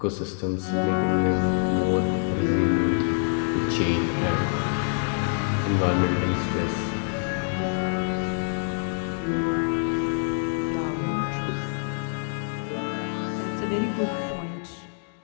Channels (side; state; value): right; silent; digital silence